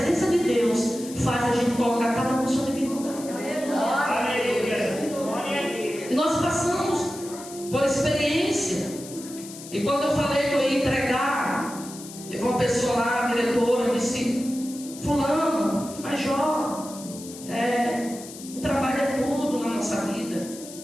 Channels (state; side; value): noise; left; hiss, 15 dB below the sound